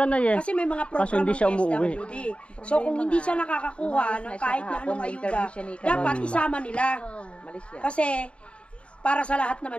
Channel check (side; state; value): right; late; 0.059 ms